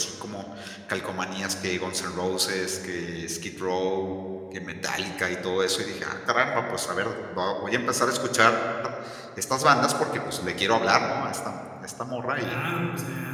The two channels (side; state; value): both; identical; correlation 1.00